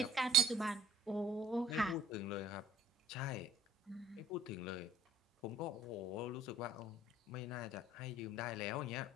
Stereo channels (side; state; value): both; normal; correlation 0.54